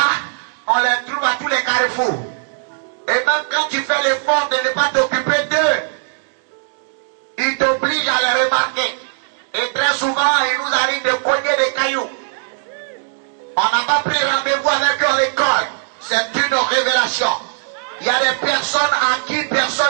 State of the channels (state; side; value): silent; left; digital silence